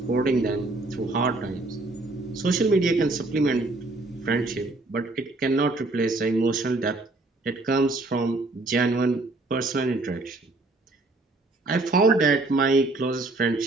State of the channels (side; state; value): left; quieter; 3.1 dB